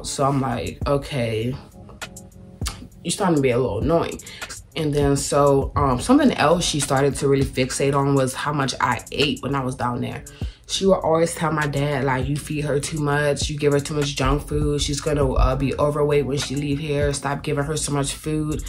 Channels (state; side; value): identical; both; correlation 1.00